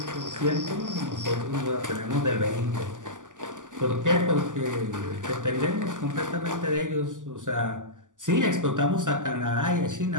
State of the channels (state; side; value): late; left; 0.87 ms